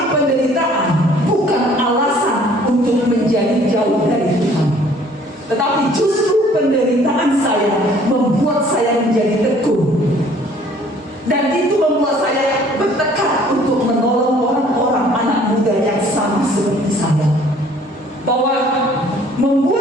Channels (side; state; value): both; normal; correlation 0.56